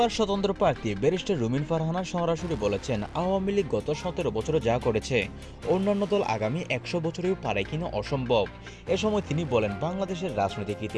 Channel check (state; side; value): identical; both; correlation 1.00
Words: স্বতন্ত্র প্রার্থী ব্যারিস্টার রুমিন ফারহানা সরাসরি বলেছেন, আওয়ামী লীগ গত 17 বছরে যা করেছে অন্যান্য দল আগামী 100 বছরেও পারে কিনা অসম্ভব। এ সময় তিনি বলেন, বাংলাদেশের রাজনৈতিক